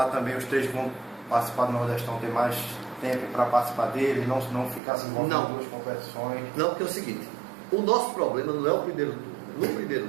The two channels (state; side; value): drops out; left; at 4.8 s